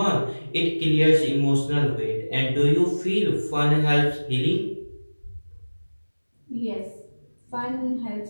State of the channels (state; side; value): inverted; both; correlation -1.00